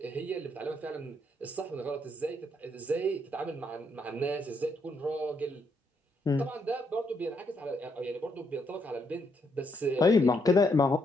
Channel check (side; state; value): both; normal; correlation 0.75